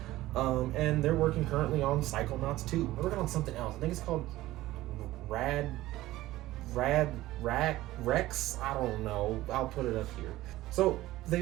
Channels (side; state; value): left; quieter; 16.5 dB